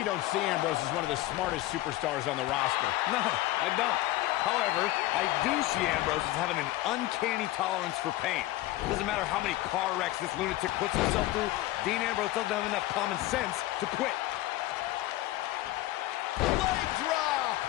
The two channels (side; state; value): right; quieter; 16.7 dB